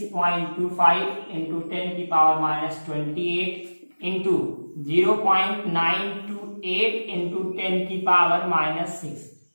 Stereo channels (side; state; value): both; inverted; correlation -1.00